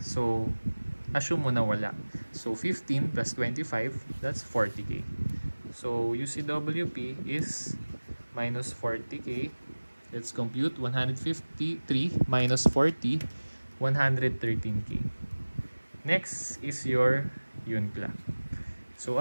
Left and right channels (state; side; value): inverted; both; correlation -1.00